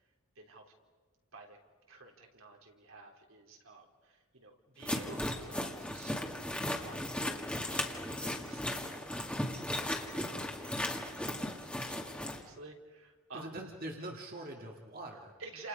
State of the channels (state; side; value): normal; both; correlation 0.61